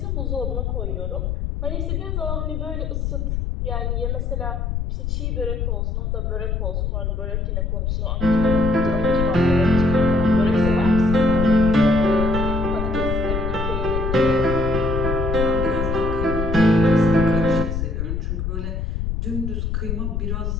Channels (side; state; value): left; noise; rumble, 2 dB below the sound